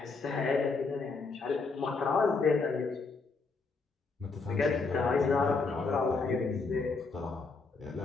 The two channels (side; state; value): right; quieter; 4.2 dB